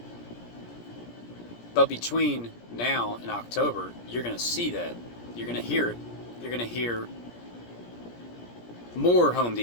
But between now and October, you're going to see that. You're going to hear it. You're going to hear more Home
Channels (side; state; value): right; late; 17 ms